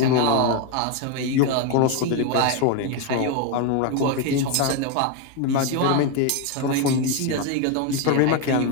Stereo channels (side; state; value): both; different; correlation 0.02